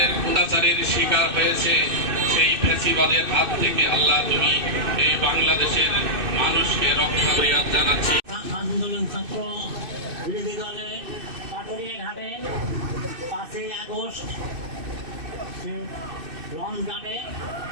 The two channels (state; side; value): late; left; 2.6 ms